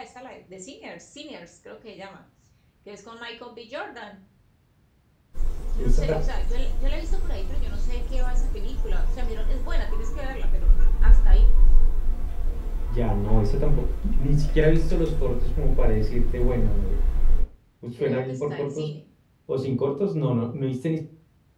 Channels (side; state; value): both; identical; correlation 1.00